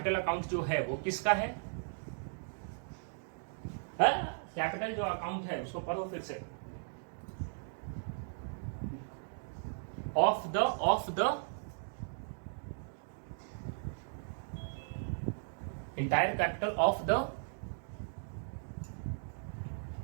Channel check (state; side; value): silent; left; digital silence